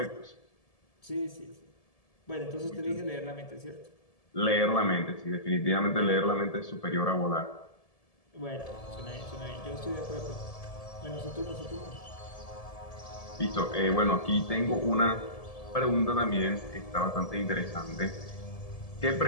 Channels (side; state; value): right; late; 1.7 ms